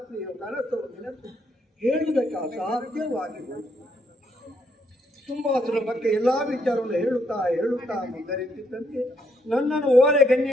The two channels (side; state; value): both; normal; correlation 0.74